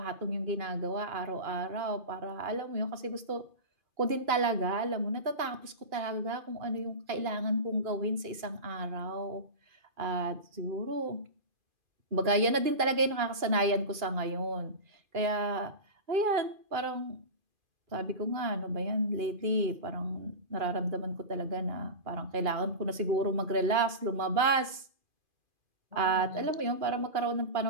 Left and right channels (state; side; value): late; left; 2.5 ms